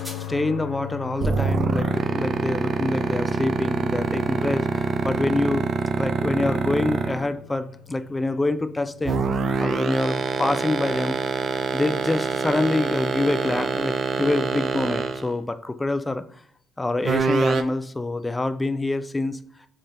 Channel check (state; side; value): normal; both; correlation 0.85